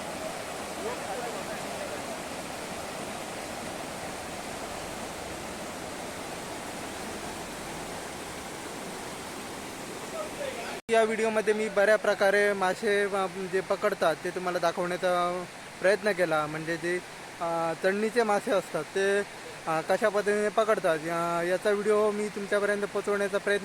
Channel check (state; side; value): identical; both; correlation 1.00